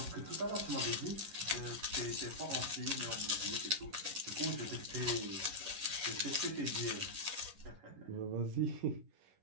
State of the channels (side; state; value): left; late; 11 ms